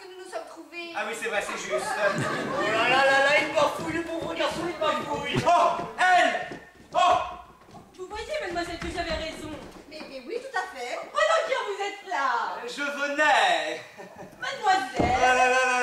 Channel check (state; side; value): identical; both; correlation 1.00